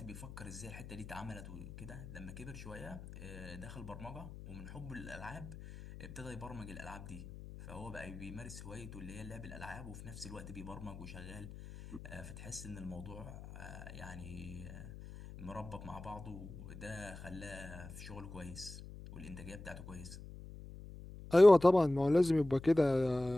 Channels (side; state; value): left; noise; hum, 13 dB below the sound